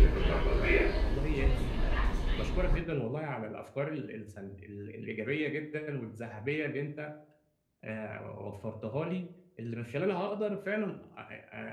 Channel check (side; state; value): both; identical; correlation 1.00